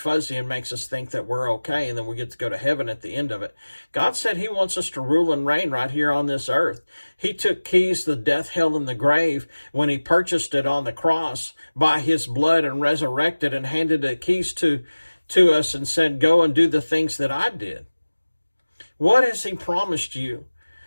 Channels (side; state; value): both; inverted; correlation -1.00